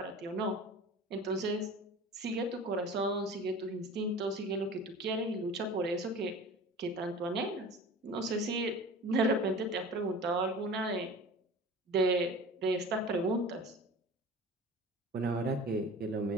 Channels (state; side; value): normal; both; correlation 0.38